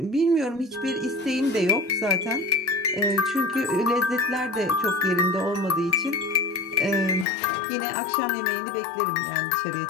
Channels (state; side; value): drops out; right; at 7.2 s